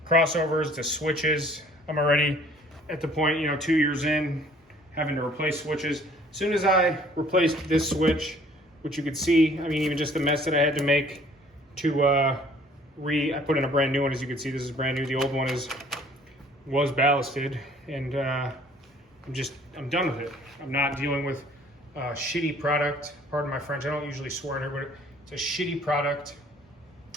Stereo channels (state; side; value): normal; both; correlation 0.56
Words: crossovers, the switches, I'm already at the point, 2 years in, having to replace switches. As soon as I replaced this switch, which you could see, even just the mess that I had to make to I put in a brand new one. As you can see, this is brand new. The old one is was ballasted, and I'm done with it. I'm not dealing with a shitty product. Pardon my French, I don't usually swear in here, but it's a shitty product.